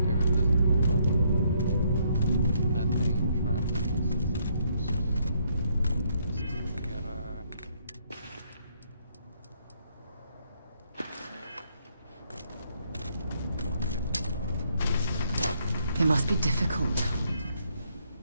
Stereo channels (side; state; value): both; inverted; correlation -0.71